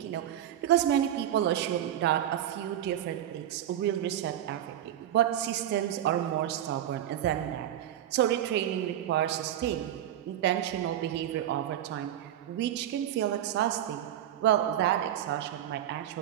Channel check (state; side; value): quieter; left; 11.4 dB